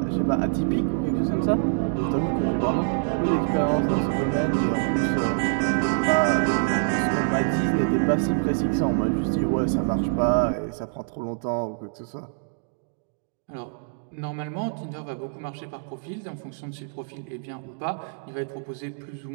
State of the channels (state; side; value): silent; left; digital silence